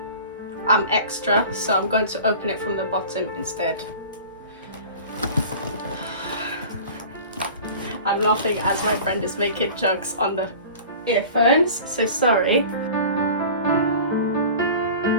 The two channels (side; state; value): both; inverted; correlation -0.39